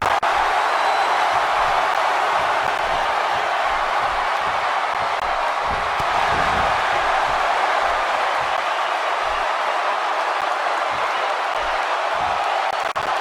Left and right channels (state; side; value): identical; both; correlation 1.00